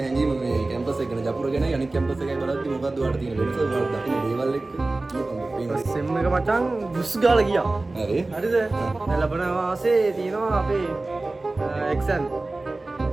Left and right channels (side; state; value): left; quieter; 3.1 dB